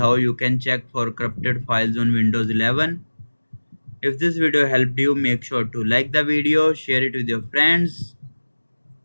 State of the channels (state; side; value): inverted; both; correlation -1.00